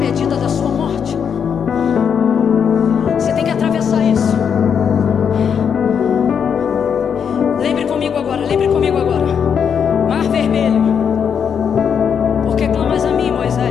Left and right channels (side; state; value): right; quieter; 7.3 dB